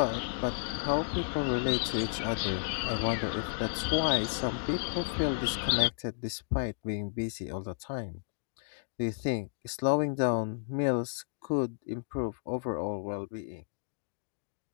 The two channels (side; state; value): right; silent; digital silence